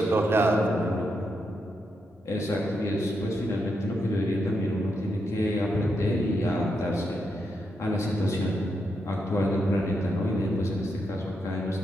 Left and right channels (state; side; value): normal; both; correlation 0.82